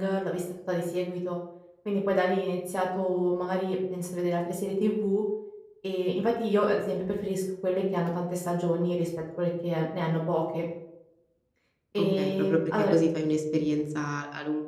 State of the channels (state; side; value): identical; both; correlation 1.00